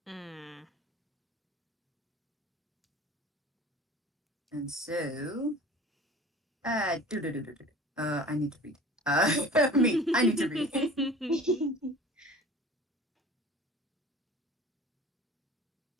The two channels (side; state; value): both; normal; correlation 0.41